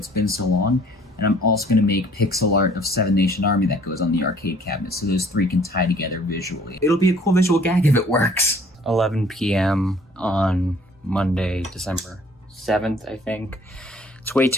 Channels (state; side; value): normal; both; correlation 0.56